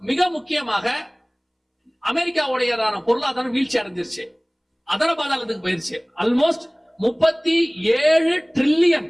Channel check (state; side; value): identical; both; correlation 1.00